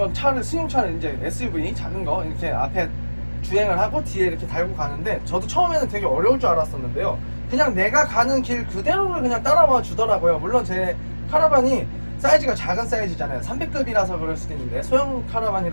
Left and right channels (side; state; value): both; inverted; correlation -1.00